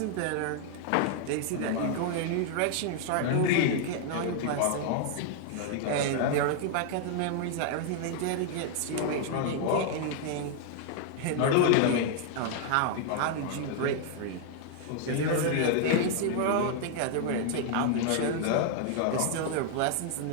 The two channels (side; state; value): both; different; correlation 0.00